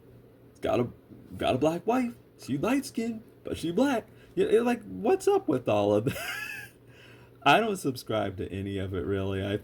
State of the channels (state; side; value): identical; both; correlation 1.00